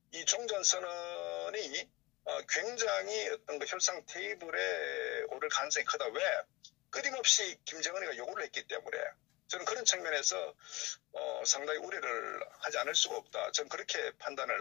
이 종전선언이 굉장히 어떤 그 협상 테이블에 오를 가능성이 크다. 왜? 끊임없이 김정은이가 요구를 했기 때문에 저는 그런 측면에서 상당히 우려를 하지 않을 수가 없다. 저는 그렇게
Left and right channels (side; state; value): right; quieter; 21.9 dB